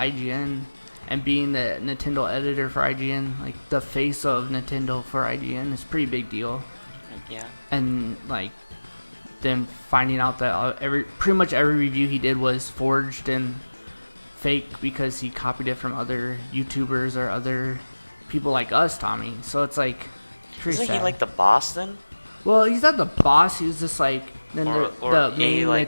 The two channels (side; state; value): both; inverted; correlation -1.00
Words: and being the Nintendo editor for IGN, like the face of Nintendo for IGN, is a pretty big deal. Yeah. And like, then finding out that pretty much every review he did was forged and fake because he copied it from other YouTubers or other people like us, Tommy. So it's like pretty sad. Isn't he like the boss then? Well, he's not the boss. He was just like the main